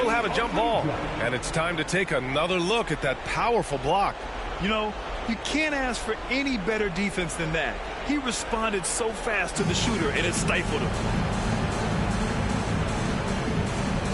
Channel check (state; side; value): identical; both; correlation 1.00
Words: have a jump ball. And it's time to take another look at that powerful block. You know, you can't ask for any better defense than that. He responded so fast to the shooter, and it stifled him.